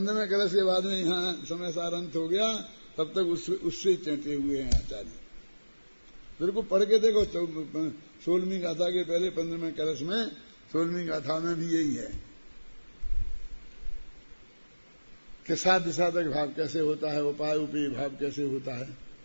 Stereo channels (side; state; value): both; inverted; correlation -1.00